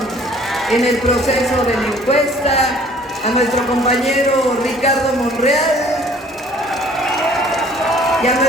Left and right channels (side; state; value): both; normal; correlation 0.55